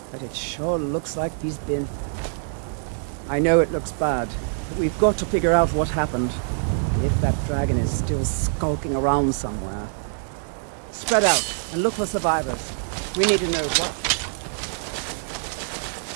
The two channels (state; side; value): silent; left; digital silence